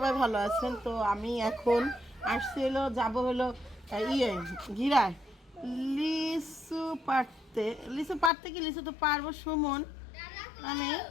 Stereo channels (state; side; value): drops out; right; at 8.3 s